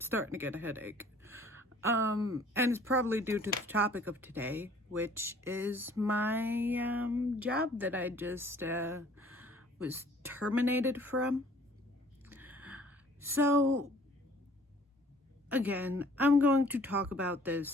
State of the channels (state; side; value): normal; both; correlation 0.55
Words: to get a headache. And it's probably due to the topic of today, which is my job that I just was terminated from. So again, I'm going to talk about